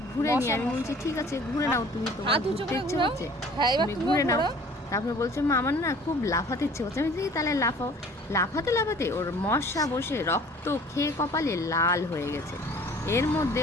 ঘুরে নিই। আমি বলছি ঠিক আছে ঘুরে নাও, তুমি তোমার ঘুরতে ইচ্ছে হচ্ছে তুমি ঘুরে নাও। তারপরে বলছে মা আমার না খুব লাফাতে ইচ্ছে হচ্ছে। আমি বলছি তাহলে লাফাও। লাফাতে লাফাতে ওর মশা বসে রক্ত খেয়ে কপালে লাল হয়ে গেছে। এর মধ্যে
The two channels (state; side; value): normal; both; correlation 0.50